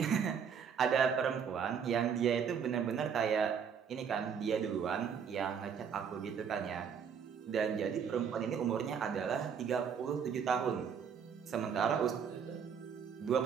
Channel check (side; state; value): left; quieter; 7.1 dB